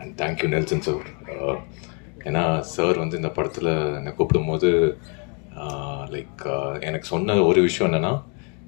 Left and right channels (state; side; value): quieter; right; 35.0 dB